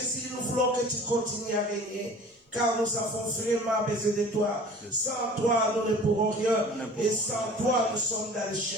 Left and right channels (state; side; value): normal; both; correlation 0.44